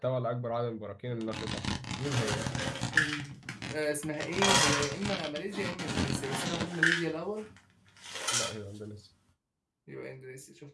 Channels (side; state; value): both; identical; correlation 1.00